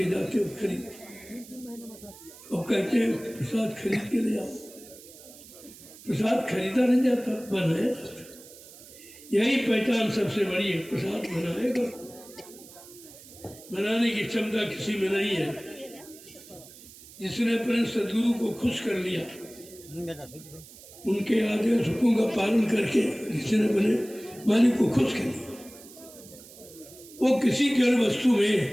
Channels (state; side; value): noise; right; hiss, 19 dB below the sound